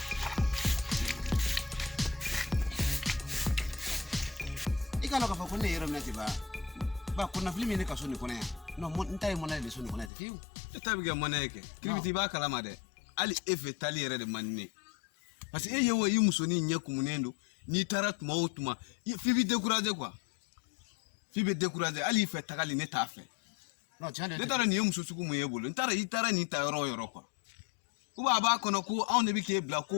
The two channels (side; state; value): right; drops out; at 10.1 s